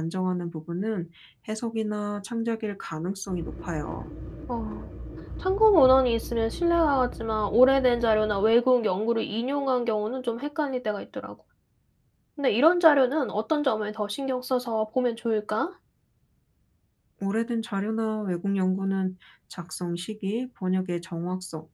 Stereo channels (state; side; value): identical; both; correlation 1.00